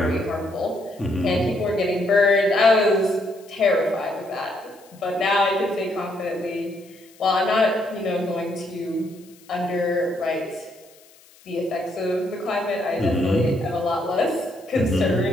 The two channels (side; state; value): left; noise; hiss, 27 dB below the sound